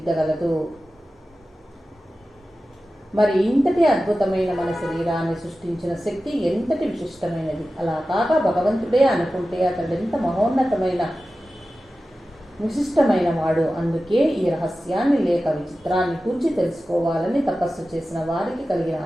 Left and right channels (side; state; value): both; normal; correlation 0.94